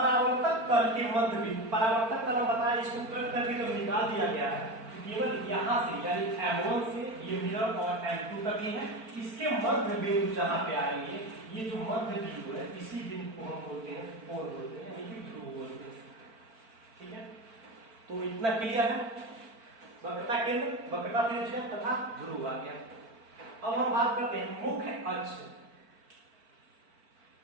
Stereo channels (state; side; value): late; left; 4.4 ms